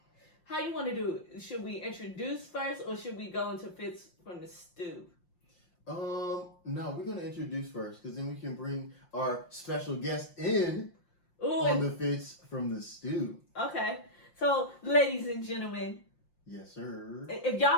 How you want to do it? Should we introduce first or should we go into Fits from the Stew? No, we're going to introduce first because then we can bring our special guest in on the Fits from the Stew. Okay. So, ladies and gentlemen. Yes, sir. If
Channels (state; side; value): late; right; 5.7 ms